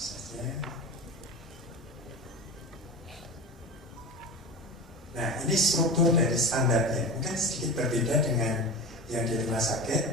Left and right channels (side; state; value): both; normal; correlation 0.29